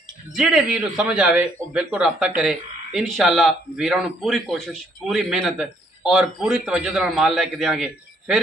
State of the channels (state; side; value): normal; both; correlation 0.67